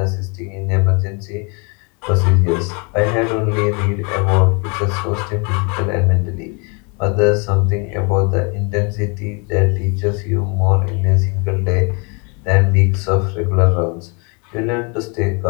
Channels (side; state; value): right; quieter; 33.5 dB